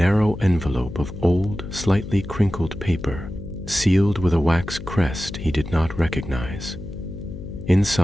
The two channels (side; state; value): left; noise; hum, 11 dB below the sound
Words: envelope of old, slightly crinkled paper, sealed with a wax crest he did not recognize.